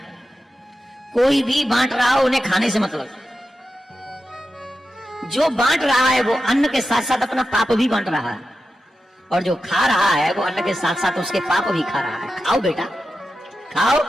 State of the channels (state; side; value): normal; both; correlation 0.91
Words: कोई भी बांट रहा हो उन्हें खाने से मतलब। जो बांट रहा है वो अन्न के साथ साथ अपना पाप भी बांट रहा है, और जो खा रहा है वो अन्न के साथ साथ उसके पाप भी खा रहा है। खाओ बेटा खाओ,